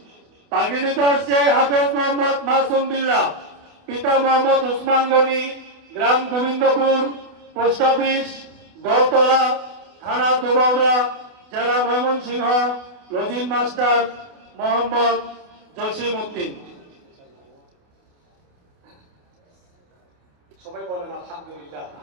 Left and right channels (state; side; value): late; left; 29 ms